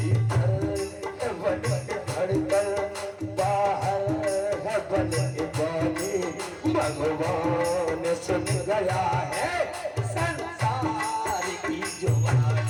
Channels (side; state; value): both; identical; correlation 1.00